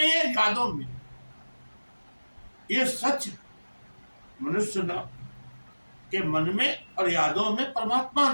है, यादों में। ये सच है, मनुष्य न के मन में और यादों में परमात्मा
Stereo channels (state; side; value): inverted; both; correlation -1.00